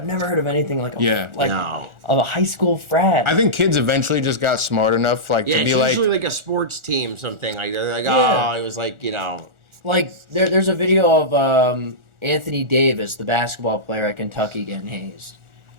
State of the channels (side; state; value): left; late; 1.4 ms